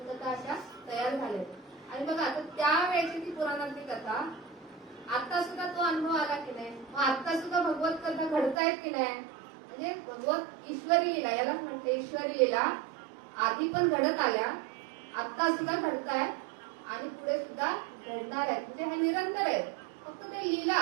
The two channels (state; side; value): drops out; left; at 8.6 s